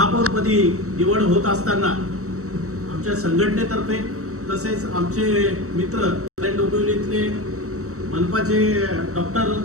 निवड होत असताना आमच्या संघटनेतर्फे तसेच आमचे मित्र कल्याण डोंबिवलीतले मनपाचे डॉक्टर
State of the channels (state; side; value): late; left; 0.64 ms